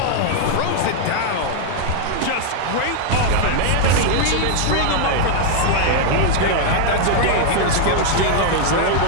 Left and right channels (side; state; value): both; different; correlation 0.00